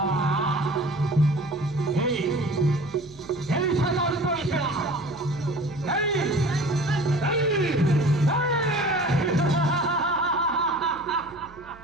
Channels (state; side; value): noise; right; hum, 22 dB below the sound